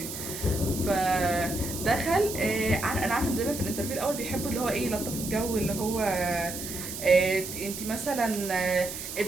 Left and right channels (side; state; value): right; noise; hiss, 8 dB below the sound